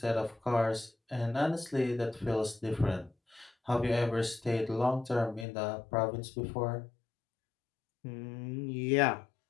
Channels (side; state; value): right; drops out; at 5.5 s